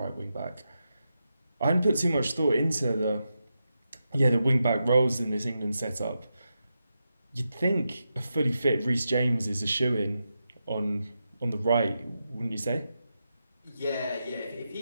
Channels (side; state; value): both; inverted; correlation -0.88